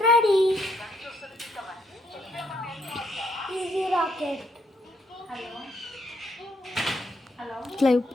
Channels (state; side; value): normal; both; correlation 0.74